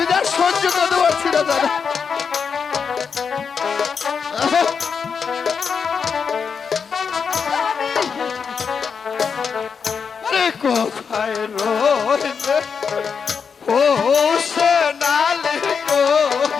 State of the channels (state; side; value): quieter; right; 6.1 dB